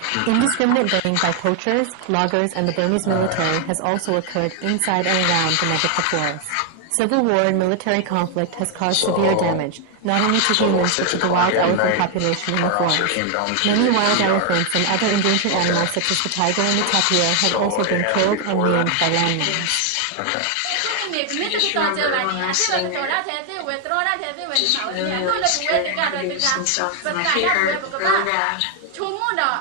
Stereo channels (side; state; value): both; different; correlation 0.00